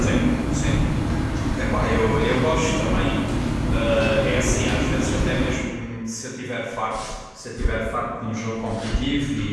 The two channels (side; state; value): both; identical; correlation 1.00